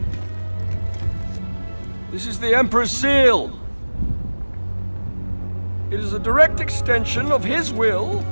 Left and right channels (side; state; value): both; inverted; correlation -1.00